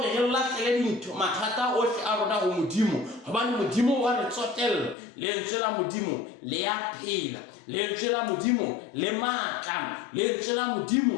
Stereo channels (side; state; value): right; drops out; at 5.0 s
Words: re lahlele dintho mathata ohle a rona ho Modimo, hobane Modimo wa re tsotella. Lentswe la Modimo le ya phela, lentswe la Modimo le matla, lentswe la